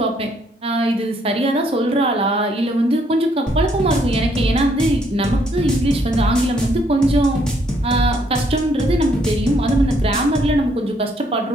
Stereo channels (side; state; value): both; normal; correlation 0.69